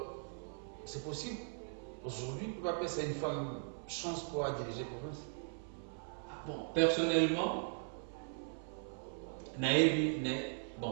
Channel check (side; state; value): left; silent; 52 dB below the other